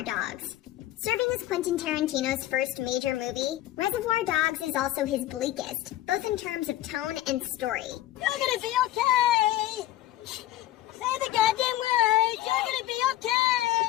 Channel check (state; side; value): quieter; right; 14.3 dB